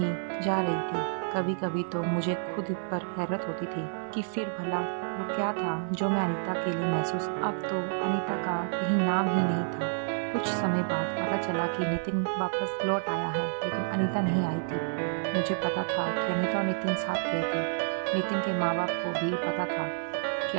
जा रही थी। कभी कभी तो मुझे खुद पर हैरत होती थी कि फिर भला वो क्या था जो मैं अनीता के लिए महसूस। अब तो अनीता का कहीं नाम ही नहीं था। कुछ समय बाद पता चला कि नितिन वापस लौट आया है, लेकिन अनीता नहीं आई थी। मुझे पता था कि अनीता और नितिन साथ गए थे। नितिन के माँ बाप को भी पता था कि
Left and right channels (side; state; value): left; silent; 56 dB below the other